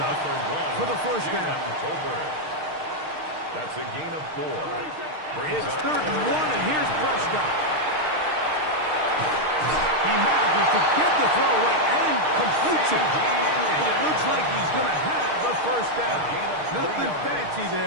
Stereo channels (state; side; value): late; left; 6.5 ms